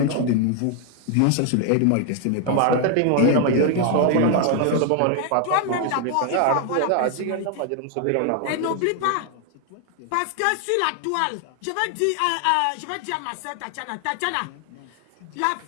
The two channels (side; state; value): both; different; correlation 0.00